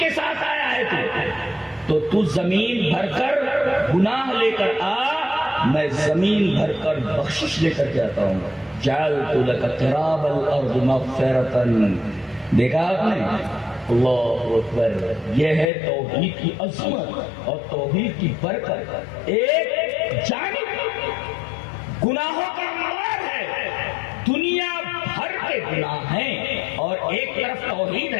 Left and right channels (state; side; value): drops out; right; at 15.7 s